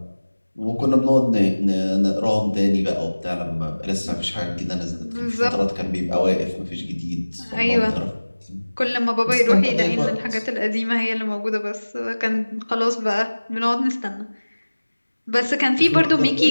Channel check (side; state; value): both; inverted; correlation -1.00